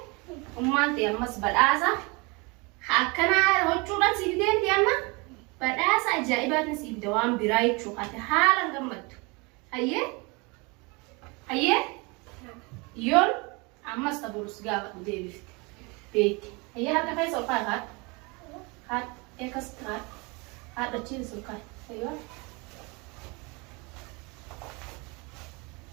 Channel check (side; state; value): left; quieter; 28.1 dB